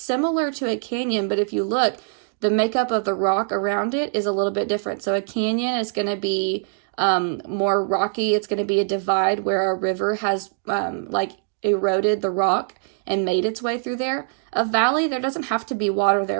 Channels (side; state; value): left; silent; 64 dB below the other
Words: to a canyon, but if you look, the makeup of the rock around it is a little bit different. So a canyon is going to be more rocky. It's going to be a divide where a river has like eroded the rock and made its way through there. A valley, there doesn't have to be water